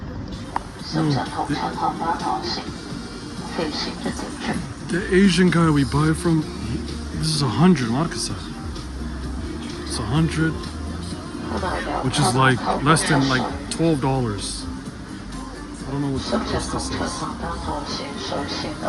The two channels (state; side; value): identical; both; correlation 1.00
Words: The Asian guy we buy from, this is 100 markasa. It's 100, which is like less than like $12. I don't know what the price this is.